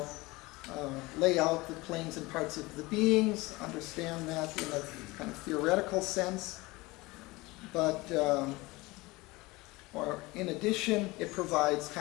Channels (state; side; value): quieter; right; 22.0 dB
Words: lay out the planes and parts of the beings, understand that in a kind of theoretical sense. But, or in addition, it provides